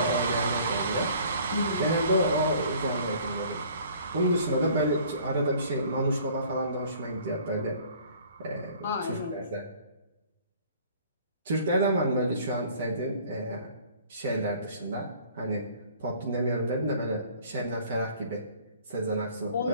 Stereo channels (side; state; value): both; inverted; correlation -0.53